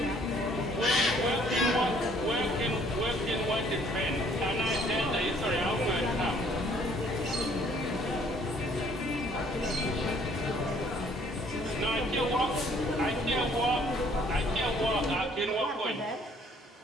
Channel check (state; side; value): normal; both; correlation 0.60